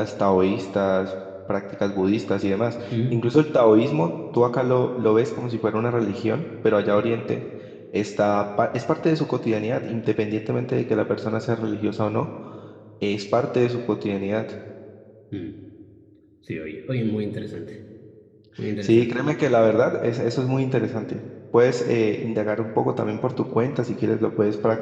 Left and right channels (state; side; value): identical; both; correlation 1.00